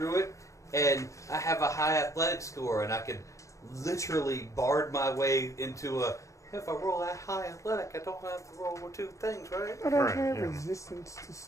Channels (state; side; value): late; right; 0.15 ms